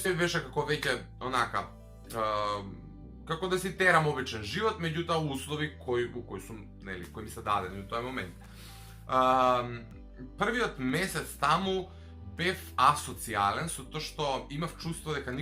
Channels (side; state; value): both; identical; correlation 1.00